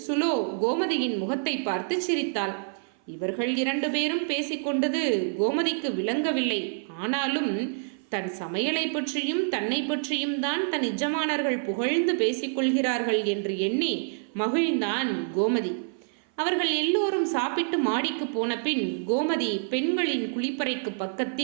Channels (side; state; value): left; silent; 57 dB below the other